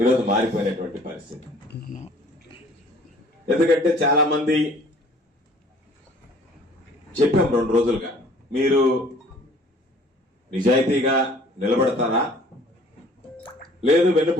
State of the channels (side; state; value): both; normal; correlation 0.54